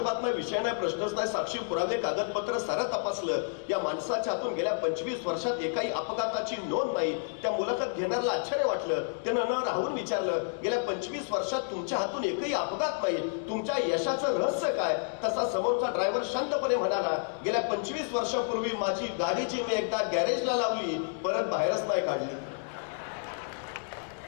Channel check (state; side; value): silent; right; digital silence